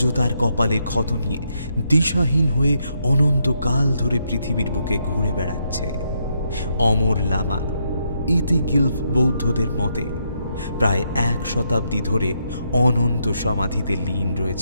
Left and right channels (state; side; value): inverted; both; correlation -0.78